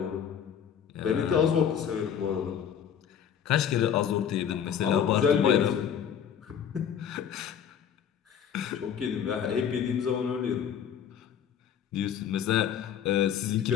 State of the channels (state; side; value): quieter; right; 8.5 dB